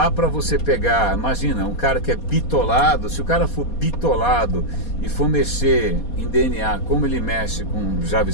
para você pegar, imagina, um cara que é bitolado, se o cara for bitolado e for mexer em DNA como ele mexe com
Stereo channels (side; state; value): right; late; 4.2 ms